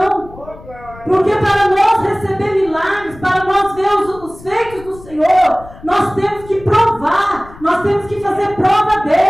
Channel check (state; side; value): noise; left; rumble, 19 dB below the sound